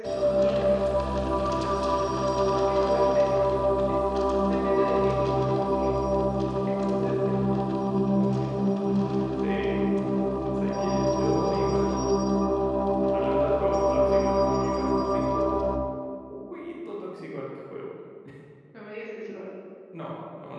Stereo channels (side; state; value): both; identical; correlation 1.00